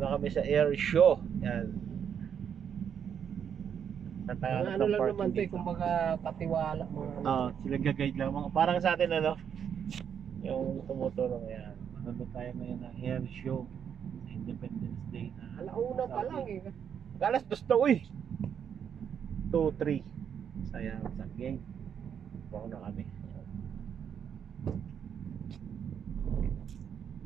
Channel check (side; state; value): left; quieter; 8.1 dB